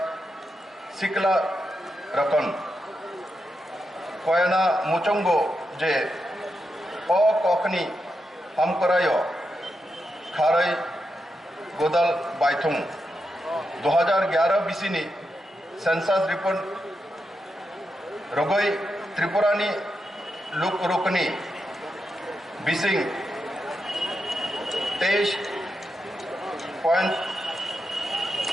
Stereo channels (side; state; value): both; normal; correlation 0.86